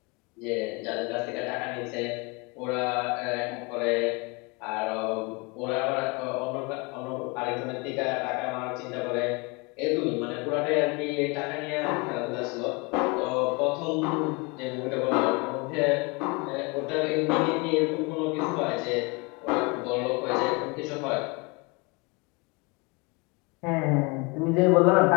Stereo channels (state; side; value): quieter; right; 28.7 dB